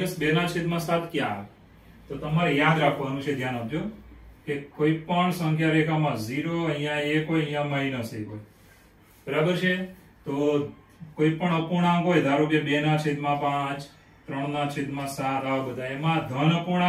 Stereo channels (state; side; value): identical; both; correlation 1.00